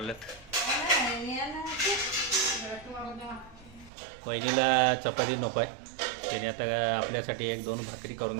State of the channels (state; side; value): drops out; left; at 3.9 s